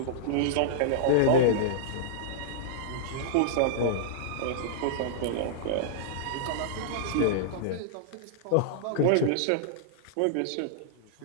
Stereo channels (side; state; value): both; different; correlation -0.02